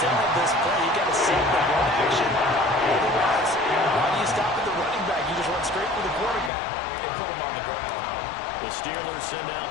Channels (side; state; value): right; drops out; at 6.5 s